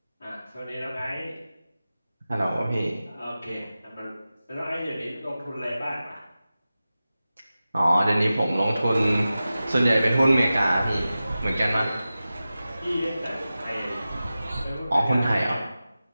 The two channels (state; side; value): inverted; both; correlation -0.94